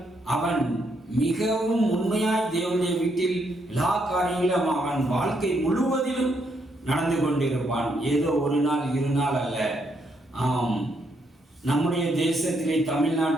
அவன் மிகவும் உண்மையாய் தேவனுடைய வீட்டில் எல்லா காரியங்களும் அவன் வாழ்க்கை முழுவதிலும் நடந்து கொண்டிருப்பான். ஏதோ ஒரு நாள் இரு நாள் அல்ல. ஆம், நம்முடைய தேசத்திலே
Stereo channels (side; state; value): both; normal; correlation 0.76